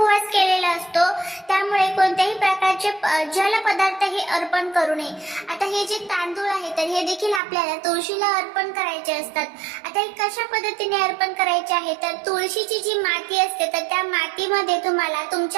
केलेला असतो. त्यामुळे कोणत्याही प्रकारचे जल पदार्थ हे अर्पण करू नये. आता हे जे तांदूळ आहे तर हे देखील आपल्याला तुळशीला अर्पण करायचे असतात. आता हे कशा पद्धतीने अर्पण करायचे आहे तर तुळशीची जी माती असते तर त्या मातीमध्ये तुम्हाला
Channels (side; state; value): left; drops out; at 7.4 s